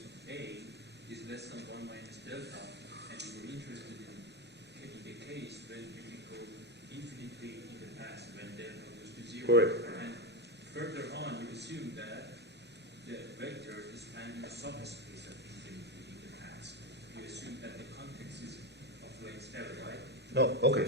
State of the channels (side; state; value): both; normal; correlation 0.13